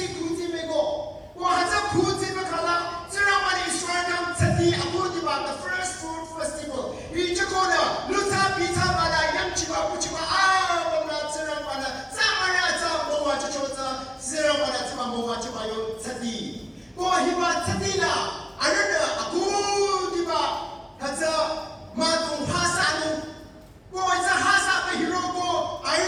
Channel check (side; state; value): both; identical; correlation 1.00